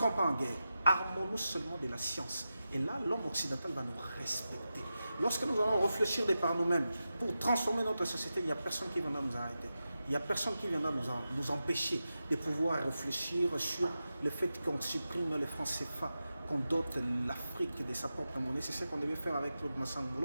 pas en guerre. Armons-nous seulement de la science. Et là, l'homme occidental va nous respecter. Lorsque nous allons réfléchir de par nous-mêmes pour transformer notre société, il n'y a personne qui viendra nous arrêter. Il n'y a personne qui viendra nous empêcher de pouvoir réfléchir sur le fait qu'on supprime les francs CFA, qu'on dote l'Afrique de sa propre monnaie. C'est ce qu'on devait faire avec Claude Massang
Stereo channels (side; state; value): both; inverted; correlation -0.91